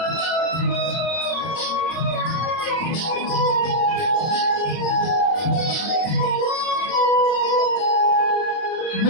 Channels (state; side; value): late; right; 31 ms